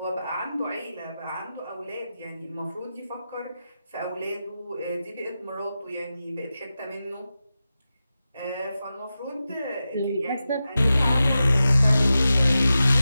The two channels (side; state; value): both; inverted; correlation -0.93